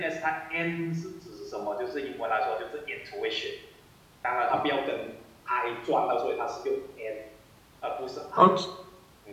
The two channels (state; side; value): identical; both; correlation 1.00